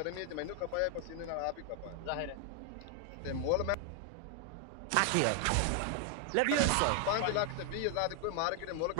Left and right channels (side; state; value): both; different; correlation 0.00